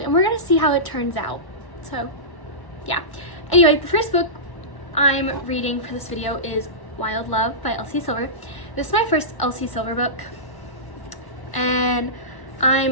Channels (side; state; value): right; late; 1.0 ms